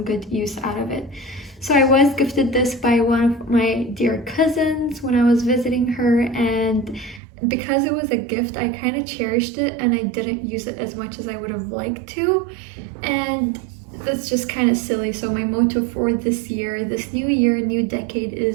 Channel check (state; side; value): drops out; left; at 7.2 s